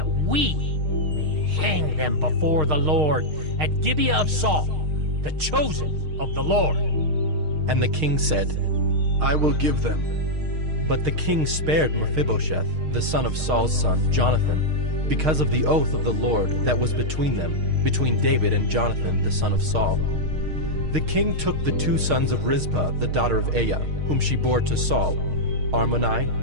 we may hang them before the Lord at Gibeah of Saul, the chosen of the Lord. And the king said, I will give them. But the king spared Mephibosheth, the son of Saul's son, Jonathan, because of the oath of the Lord that was between them, between David and Jonathan, the son of Saul. The king took the 2 sons of Rizpah, the daughter of Aiah, whom she bore to Saul, Armoni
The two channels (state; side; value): late; left; 6.5 ms